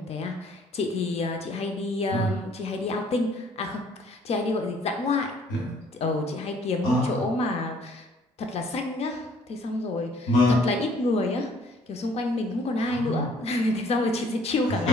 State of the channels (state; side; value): normal; both; correlation 0.60